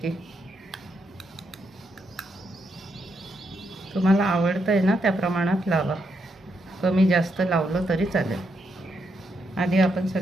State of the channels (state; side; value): normal; both; correlation 0.80